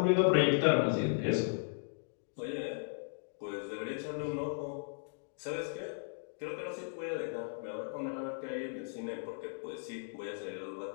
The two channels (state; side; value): silent; right; digital silence